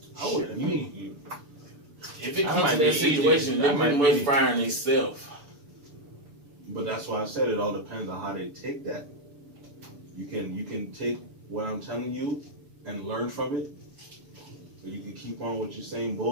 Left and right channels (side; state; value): left; late; 6.9 ms